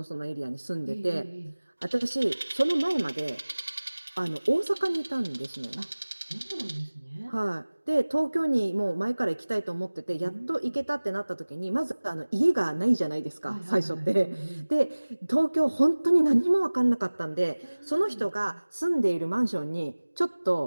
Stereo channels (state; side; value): inverted; both; correlation -1.00